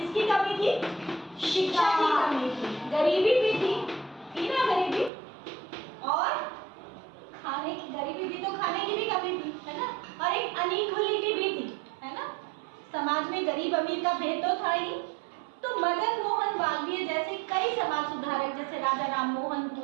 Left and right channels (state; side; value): drops out; left; at 5.1 s